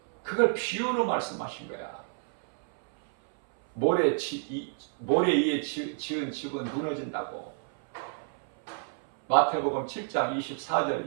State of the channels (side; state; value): left; silent; 58 dB below the other